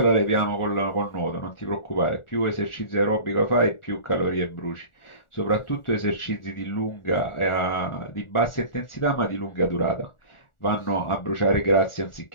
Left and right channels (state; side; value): late; right; 1.4 ms